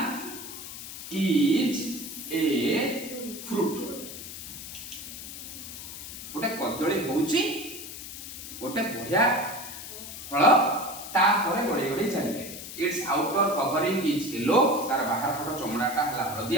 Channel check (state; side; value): noise; left; hiss, 10 dB below the sound